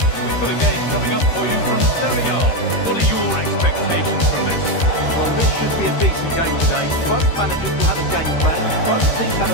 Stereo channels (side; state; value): right; late; 13 ms